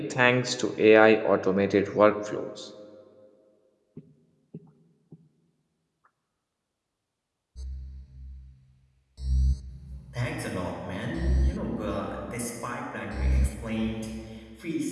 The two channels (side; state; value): both; identical; correlation 1.00